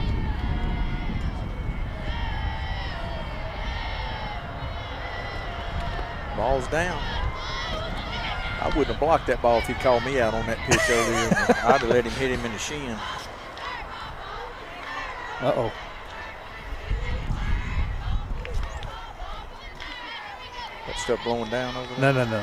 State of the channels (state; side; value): identical; both; correlation 1.00